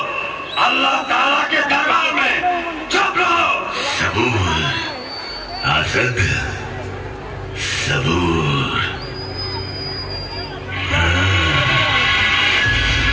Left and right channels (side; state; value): both; identical; correlation 1.00